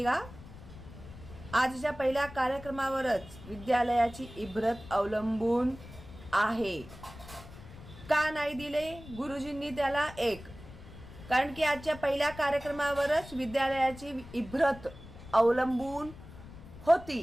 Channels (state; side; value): noise; left; rumble, 16 dB below the sound